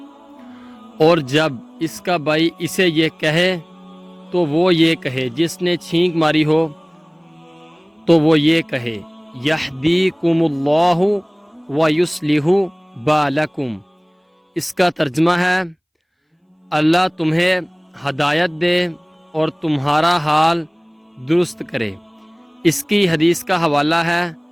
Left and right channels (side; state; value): both; identical; correlation 1.00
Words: اور جب اس کا بھائی اسے یہ کہے تو وہ یہ کہے، جس نے چھینک ماری ہو تو وہ یہ کہے یہدیکم اللہ ویصلح بالکم۔ اس کا ترجمہ ہے، اللہ تمہیں ہدایت دے اور تمہارا حال درست کرے۔ اس کی حدیث کا حوالہ ہے